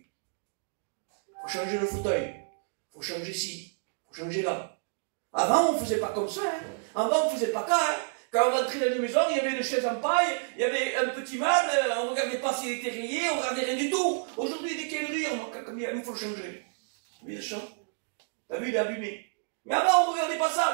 Il faut changer le fauteuil. Il faut changer ci. Il faut changer là. Avant, on ne faisait pas comme ça. Hein. Avant, on ne faisait pas ça. Hein. Quand on rentrait dans une maison, il y avait une chaise en paille, il y avait un petit meuble, on ne regardait pas s'il était rayé, on ne regardait rien du tout. Aujourd'hui, dès qu'il y a une rire, il faut le changer. Oui, le champ. T'as vu, il est abîmé. Mais avant, on ne regardait pas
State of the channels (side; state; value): left; silent; digital silence